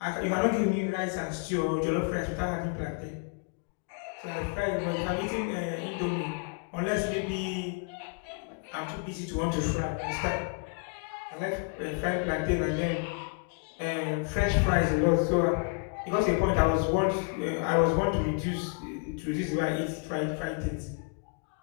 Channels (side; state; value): right; quieter; 37.3 dB